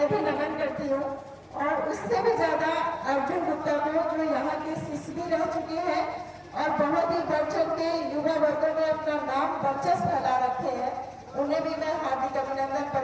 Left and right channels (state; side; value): identical; both; correlation 1.00